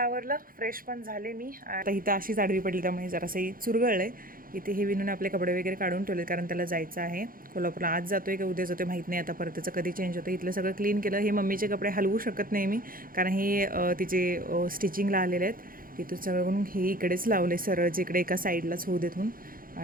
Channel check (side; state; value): left; late; 0.41 ms